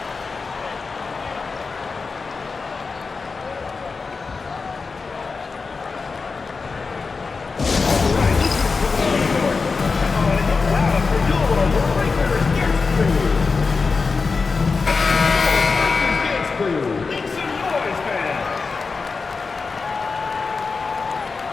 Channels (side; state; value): right; quieter; 4.5 dB